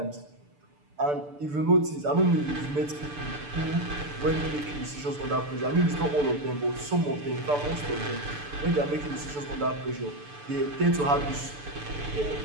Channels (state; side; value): late; left; 6.8 ms